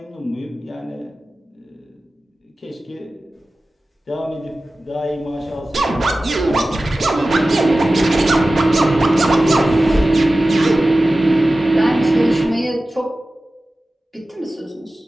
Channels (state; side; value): normal; both; correlation 0.95